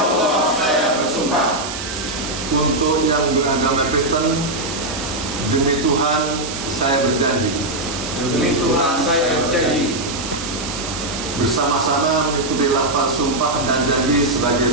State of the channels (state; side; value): noise; right; hiss, 8 dB below the sound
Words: saya bersumpah. Untuk yang beragama Kristen, demi Tuhan saya berjanji. Demi Tuhan saya berjanji. Bersama-sama mengikuti lafaz sumpah dan janji sebagai